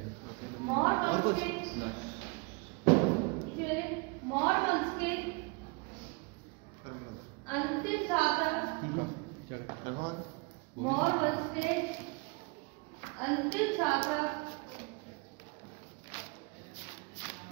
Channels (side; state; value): left; quieter; 29.8 dB